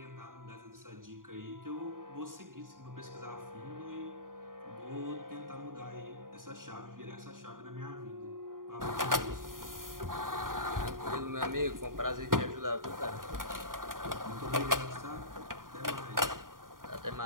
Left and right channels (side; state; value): left; late; 0.90 ms